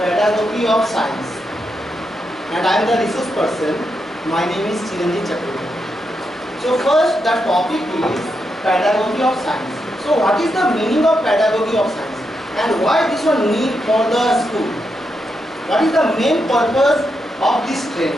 of science, and I am the resource person. My name is Chiranjit Chakraborty. So first, the topic is pedagogy of science. So what is the meaning of pedagogy of science, and why this one need for the school? What is the main purpose of this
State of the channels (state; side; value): normal; both; correlation 0.84